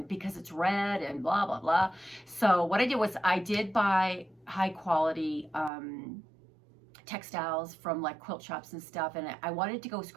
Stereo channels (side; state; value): left; drops out; at 5.7 s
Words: because it's red and blah, blah, blah. So what I did was I did buy high quality textiles from like quilt shops and stuff, and I wanted to go